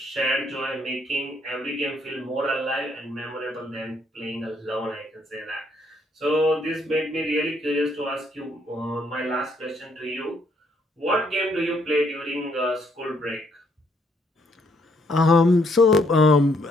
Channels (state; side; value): normal; both; correlation 0.70